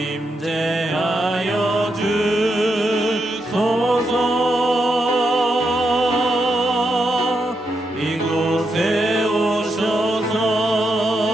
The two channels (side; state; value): both; normal; correlation 0.83